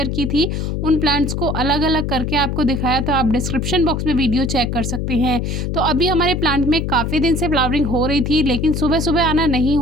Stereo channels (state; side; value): noise; left; hum, 2 dB below the sound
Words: की थी। उन प्लांट्स को अलग अलग करके आपको दिखाया, तो आप डिस्क्रिप्शन बॉक्स में वीडियो चेक कर सकते हैं। तो अभी हमारे प्लांट में काफ़ी दिन से फ्लावरिंग हो रही थी, लेकिन सुबह सुबह आना नहीं